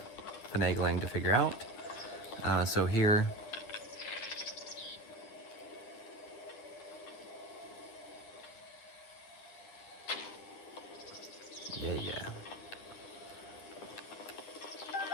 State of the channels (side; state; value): right; late; 10 ms